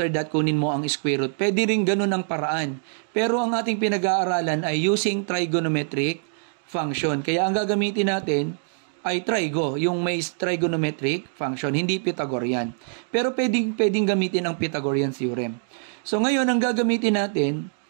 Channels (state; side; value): silent; left; digital silence